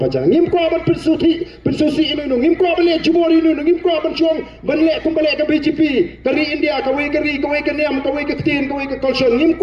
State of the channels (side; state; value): both; identical; correlation 1.00